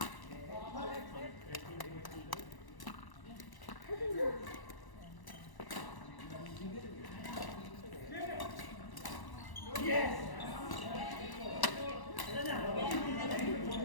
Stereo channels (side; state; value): right; late; 1.1 ms